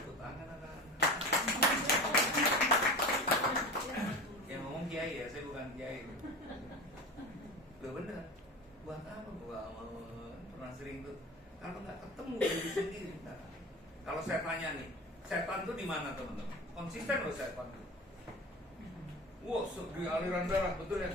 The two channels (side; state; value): both; normal; correlation 0.32